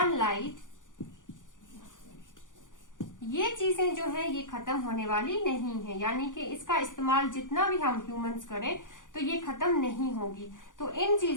ये चीजें जो है ये खत्म होने वाली नहीं है, यानी कि इसका इस्तेमाल जितना भी हम ह्यूमंस करें तो ये खत्म नहीं होगी। तो इन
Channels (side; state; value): right; late; 0.88 ms